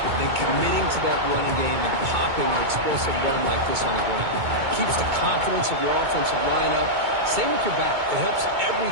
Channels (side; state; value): left; late; 2.2 ms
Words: than committing to that running game and popping an explosive run like this on the ground. Keeps the confidence of your offensive line up. Same with your back. It helps